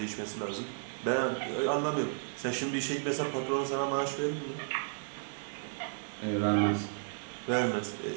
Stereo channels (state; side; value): silent; left; digital silence